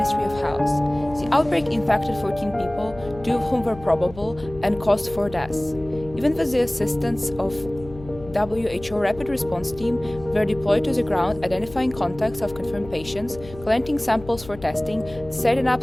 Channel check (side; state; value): left; noise; hum, 16 dB below the sound